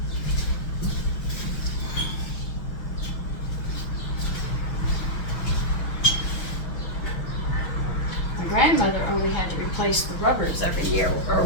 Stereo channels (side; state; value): right; late; 6.2 ms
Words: My grandmother only had to replace the rubbers every year or